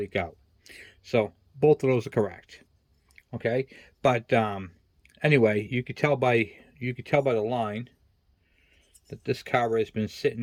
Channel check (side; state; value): both; identical; correlation 1.00